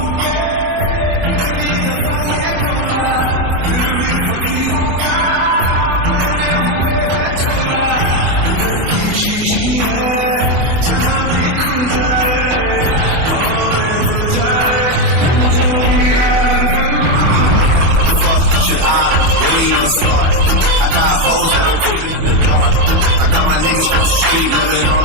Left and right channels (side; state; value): left; late; 24 ms